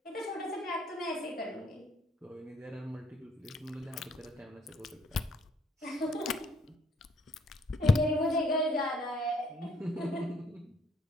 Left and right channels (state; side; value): normal; both; correlation 0.66